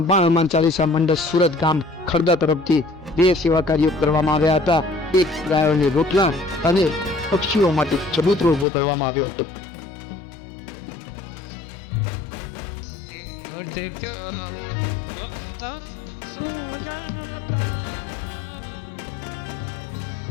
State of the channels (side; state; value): right; drops out; at 8.7 s